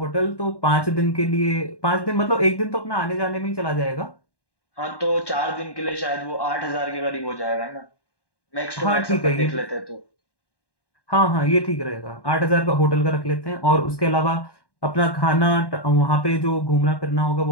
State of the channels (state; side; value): late; right; 1.1 ms